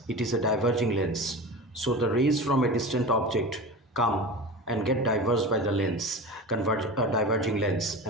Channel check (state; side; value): normal; both; correlation 0.30